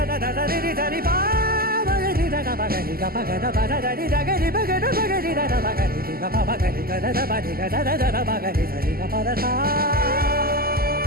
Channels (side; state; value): left; late; 0.43 ms